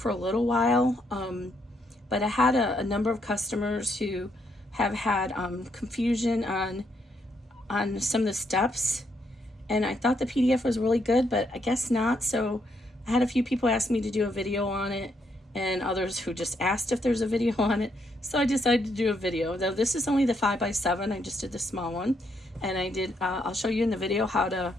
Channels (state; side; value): normal; both; correlation 0.75